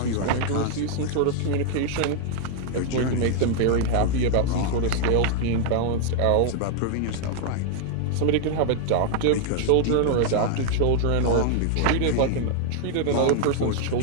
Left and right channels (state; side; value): different; both; correlation 0.00